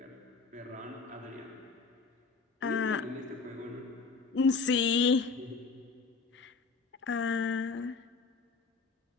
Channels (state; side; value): quieter; right; 4.7 dB